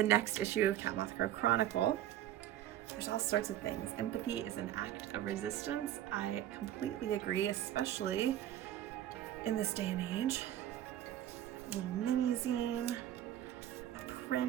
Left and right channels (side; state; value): left; quieter; 12.2 dB